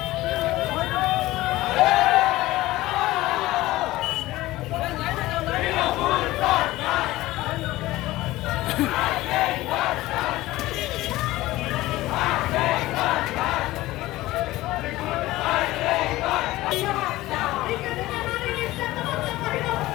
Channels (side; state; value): right; quieter; 17.5 dB